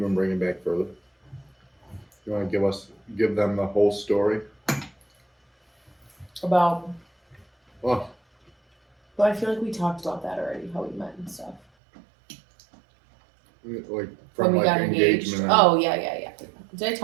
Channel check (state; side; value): drops out; left; at 11.6 s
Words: bring it back further? You want to give them the whole story? About what? Well, I feel like we talked about that already, how we met and stuff. Like from when we got engagement. Oh yeah. Did I